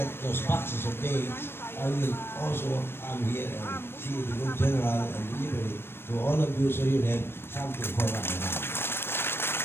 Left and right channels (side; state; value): right; late; 0.11 ms